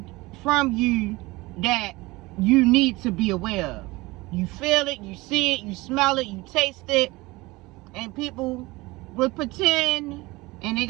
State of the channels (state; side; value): quieter; left; 21.7 dB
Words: from you that you need to be aware of. You feel it, you see it, you smell it, you taste it. And people will pretend, and they